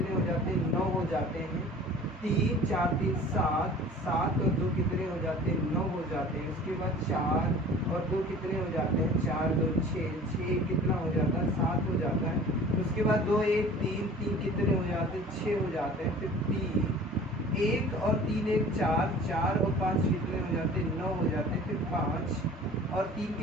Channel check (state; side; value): normal; both; correlation 0.45